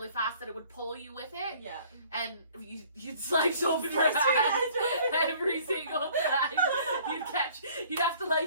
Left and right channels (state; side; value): inverted; both; correlation -0.55